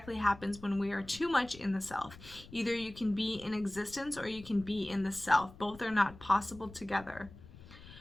happens when we are too much in the self? Either you can be in existence or you can be in the self. Both are not possible together.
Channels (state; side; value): noise; left; rumble, 18 dB below the sound